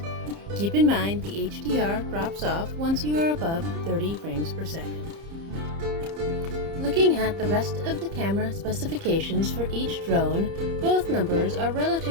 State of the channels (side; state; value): left; late; 30 ms